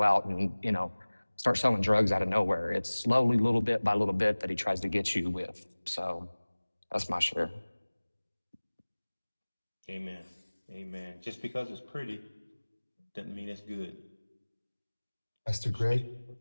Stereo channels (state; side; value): inverted; both; correlation -1.00